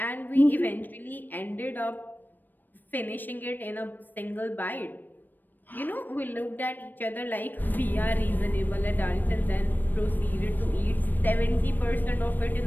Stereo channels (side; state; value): right; late; 0.091 ms